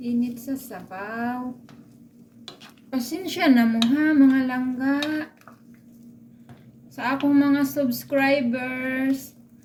sa sabaw. Pasensya na mo ha, mga langga. Sa akong mga subscribers,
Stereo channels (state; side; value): identical; both; correlation 1.00